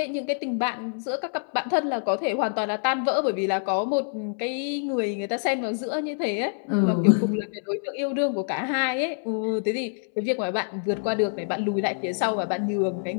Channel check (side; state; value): right; silent; 61 dB below the other